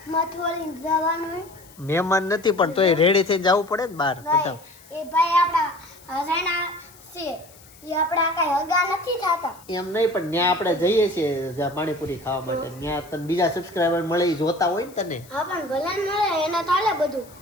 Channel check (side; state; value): left; noise; hiss, 24 dB below the sound